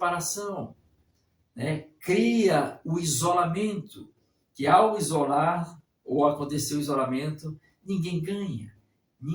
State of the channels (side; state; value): both; identical; correlation 1.00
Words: né? Cria o isolamento, que ao isolar ou acontecer o isolamento, ninguém ganha,